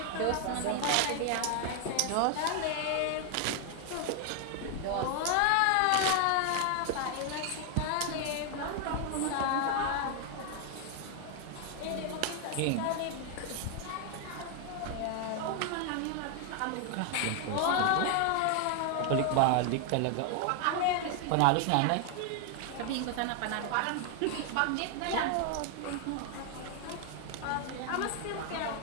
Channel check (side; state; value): both; different; correlation 0.00